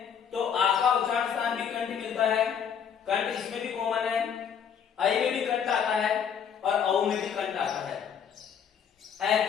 तो आ का उच्चारण स्थान भी कंठ मिलता है, कंठ इसमें भी कॉमन है, आई में भी कंठ आता है और औ में भी कंठ आता है। ऐ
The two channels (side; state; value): right; quieter; 7.8 dB